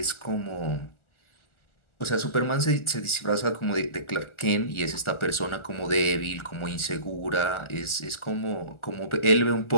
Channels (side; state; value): right; late; 1.4 ms